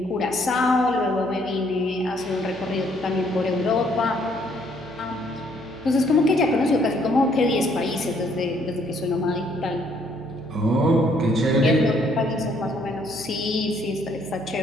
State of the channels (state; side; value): noise; right; hum, 18 dB below the sound